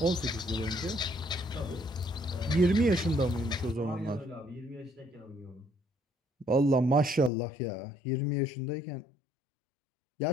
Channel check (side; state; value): right; drops out; at 7.3 s